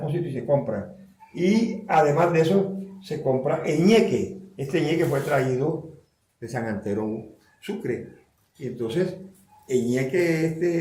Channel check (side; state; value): both; identical; correlation 1.00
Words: y se compran. Y además de eso, se compra ñeque. Este ñeque fue traído de San Antero, Sucre. Y entonces, el ñeque